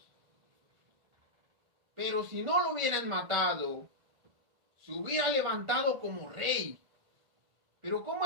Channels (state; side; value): late; left; 1.7 ms